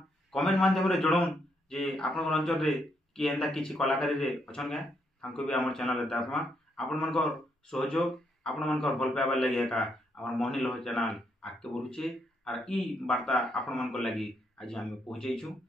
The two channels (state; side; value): normal; both; correlation 0.76